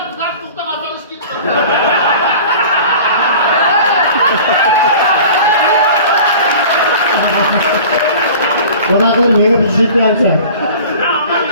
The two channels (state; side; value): inverted; both; correlation -0.42